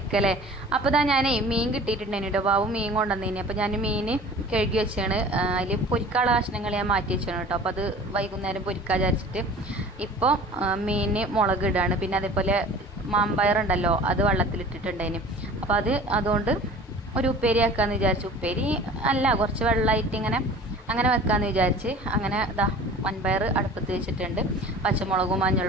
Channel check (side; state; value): both; normal; correlation 0.43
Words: അപ്പോൾ ഞാൻ മീൻ കിട്ടിയിട്ടുണ്ടായിരുന്നു കേട്ടോ. ബാബു മീൻ കൊണ്ടുവന്നേനി. അപ്പോൾ ഞാൻ മീൻ കഴുകി വെച്ചാണ്. അതിൽ പൊരിക്കാനുള്ള കഷ്ണങ്ങൾ ഞാൻ മാറ്റി വെച്ചാണ് കേട്ടോ. അപ്പോൾ അത് വൈകുന്നേരം പൊരിക്കാൻ വിചാരിച്ചിട്ട് ഇപ്പോൾ മീൻ മുളക് ഇടാണ്. പിന്നെ അതേപോലെ മാമ്പയറുണ്ടല്ലോ, അത് വെള്ളത്തിലിട്ടിട്ടുണ്ടായിന്. അപ്പോൾ അതുകൊണ്ട് ഒരു ഉപ്പേരി ആക്കാമെന്ന് വിചാരിച്ചു. ഉപ്പേരി അല്ല, കുറച്ച് വെള്ളമായിട്ട് അങ്ങനെ വെക്കാമെന്ന് വിചാരിച്ച് അങ്ങനെ വൻപയർ അടുപ്പത്ത് വെച്ചിട്ടുണ്ട്. പച്ചമുളകും